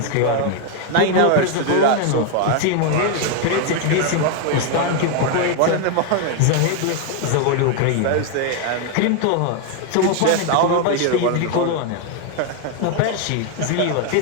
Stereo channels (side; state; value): both; different; correlation 0.01